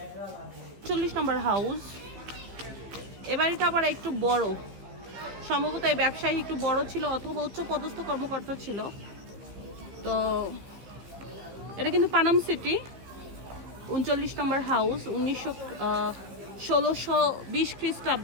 40 নম্বর হাউস। এ বাড়িটা আবার একটু বড়, সম্ভবত এই ব্যবসায়ী একটু বড় ছিল অথবা উচ্চ পদস্থ কর্মকর্তা ছিল। তো এটা কিন্তু পানাম সিটি। 39 নম্বর হাউস। 1620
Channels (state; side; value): late; left; 15 ms